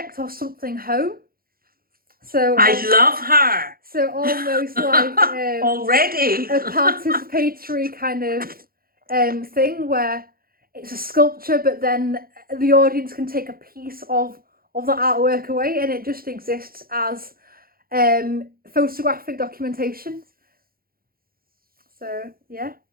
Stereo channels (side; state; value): left; late; 0.43 ms